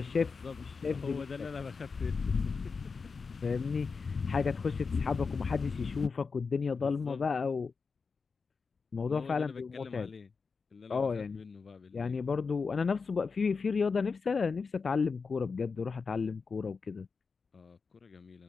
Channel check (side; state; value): right; quieter; 4.9 dB